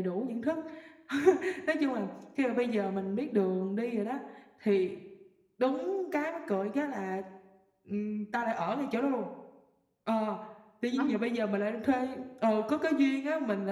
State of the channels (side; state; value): both; identical; correlation 1.00